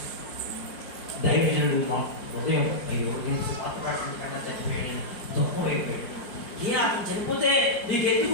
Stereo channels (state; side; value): late; right; 5.6 ms